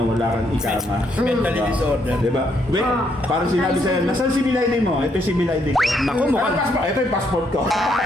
ikama. Mentally disorder. Diba? Wait, parang sinabi sa'yo, nasaan si Milady mo? Ito si Milady ko. Naku, mukhang... Ito yung passport ko.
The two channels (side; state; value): both; normal; correlation 0.74